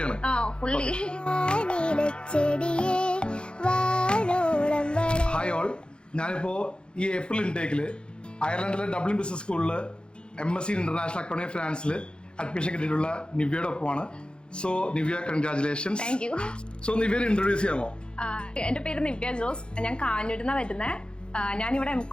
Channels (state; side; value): late; right; 0.053 ms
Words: ഫുള്ളി. ഹായ് ഓൾ, ഞാനിപ്പോ ഈ ഏപ്രിൽ ഇൻടേക്കില് അയർലൻഡിലെ ഡബ്ലിൻ ബിസിനസ് സ്കൂളിൽ MSc ഇന്റർനാഷണൽ അക്കൗണ്ടിംഗ് ഫിനാൻസിൽ അഡ്മിഷൻ കിട്ടിയിട്ടുള്ള നിവ്യയുടെ ഒപ്പമാണ്. So Nivya, congratulations. Thank you. So നിവ്യനെ ഇൻട്രൊഡ്യൂസ് ചെയ്യാമോ? എന്റെ പേര് നിവ്യ ജോസ്. ഞാൻ കാഞ്ഞൂരിൽ വരുന്നത്. ഞാനിവിടെ